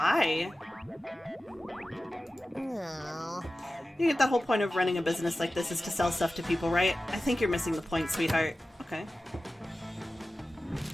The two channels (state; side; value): normal; both; correlation 0.95